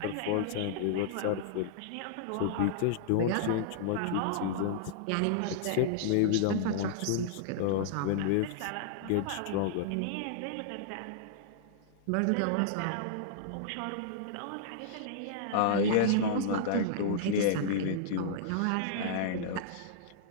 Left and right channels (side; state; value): both; different; correlation -0.02